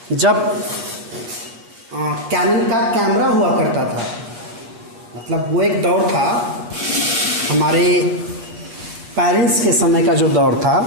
जब कैनन का कैमरा हुआ करता था, मतलब वो एक दौर था, हमारे पेरेंट्स के समय का जो दौर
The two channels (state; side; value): late; left; 8.3 ms